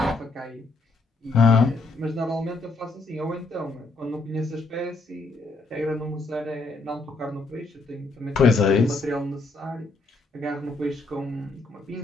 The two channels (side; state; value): right; quieter; 3.2 dB